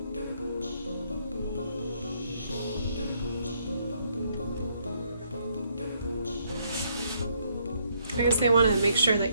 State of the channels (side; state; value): both; inverted; correlation -0.71